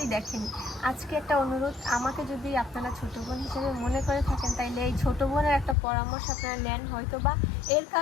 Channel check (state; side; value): drops out; right; at 5.8 s